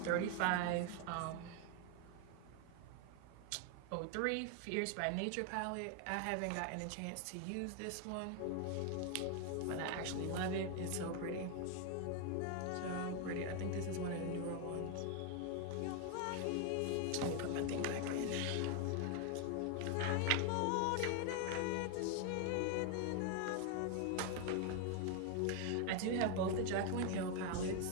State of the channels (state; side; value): different; both; correlation 0.01